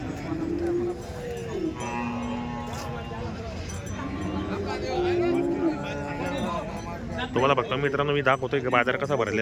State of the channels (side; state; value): both; identical; correlation 1.00